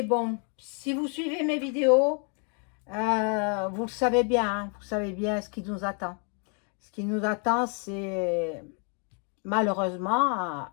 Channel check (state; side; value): quieter; right; 39.7 dB